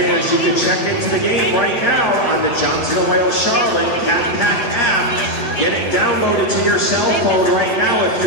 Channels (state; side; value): late; right; 7.8 ms